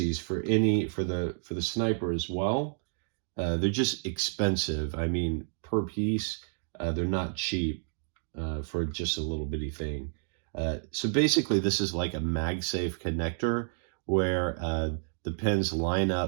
for the sniper as well. They're just expensive. I mean, per piece, they're not cheap for just a little bitty thing. So basically, this is like a MagSafe connector where the pins line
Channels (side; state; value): left; silent; digital silence